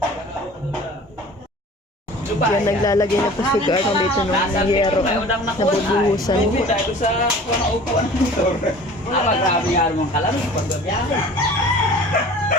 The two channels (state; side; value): normal; both; correlation 0.44